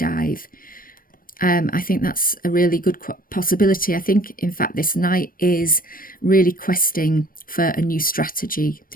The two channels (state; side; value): late; right; 0.41 ms